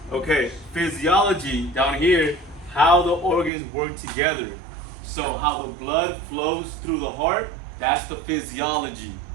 Okay, physiology down here, how the organs work together. So how the blood flows through the heart, that's the physiology.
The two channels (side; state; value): left; drops out; at 3.5 s